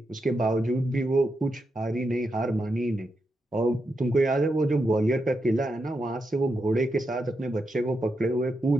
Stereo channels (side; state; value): both; normal; correlation 0.85